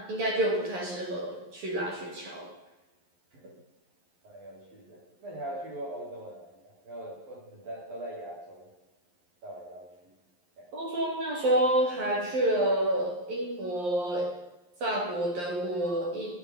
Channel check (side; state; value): left; late; 11 ms